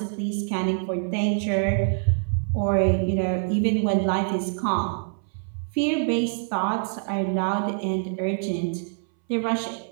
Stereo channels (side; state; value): left; silent; 62 dB below the other